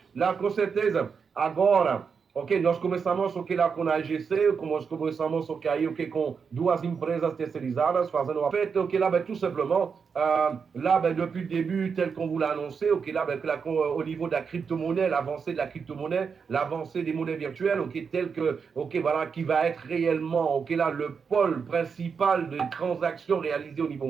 La com certeza, agora, ok, nós começamos ok, lá com a AGC, nós começamos ok, aí, ok, com 2 empresas terceirizadas, fazendo a fête, ok, là, ben, tout simplement, là, ben, depuis le début, tel qu'on vous l'a annoncé, ok, là, ben, au niveau de la crypto-monnaie, l'avancée de la crypto-monnaie, l'avancée des monnaies virtuelles, ok, tel que, ok, voilà, qui va être réellement, ok, là, le pôle principal de transactions réalisées au niveau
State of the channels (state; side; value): quieter; left; 6.0 dB